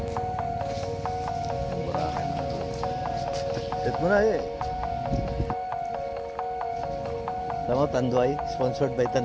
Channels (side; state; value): both; identical; correlation 1.00